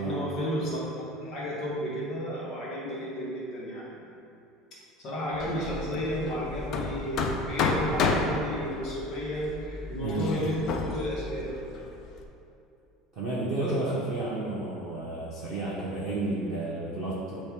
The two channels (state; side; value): normal; both; correlation 0.37